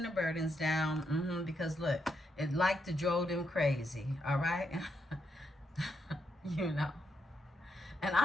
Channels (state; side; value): normal; both; correlation 0.80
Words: the burdens down because, look, it like to drove them crazy. All right? You know. And